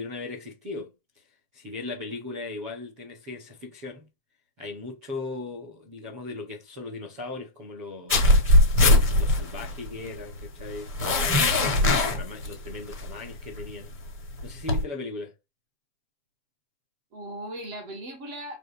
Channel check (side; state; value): left; late; 7.5 ms